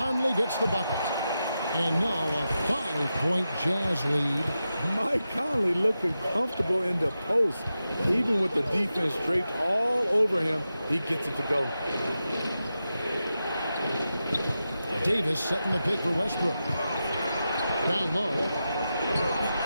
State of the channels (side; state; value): both; inverted; correlation -0.90